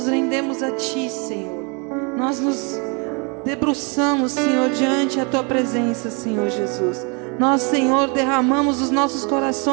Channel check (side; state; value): left; quieter; 33.8 dB